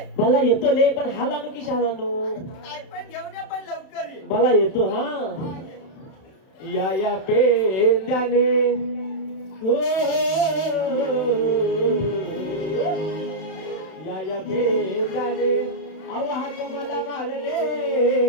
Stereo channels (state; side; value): late; right; 32 ms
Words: मला येतो ले पण हाल आणू की शाल आणू अरे तू काय पण घेऊन ये पण लवकर ये मला येतो हा हा, ये. या पेंद्याने हो या पेंद्याने आवाज मला मारले